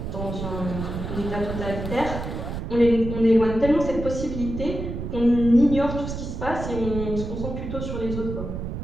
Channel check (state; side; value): noise; right; rumble, 6 dB below the sound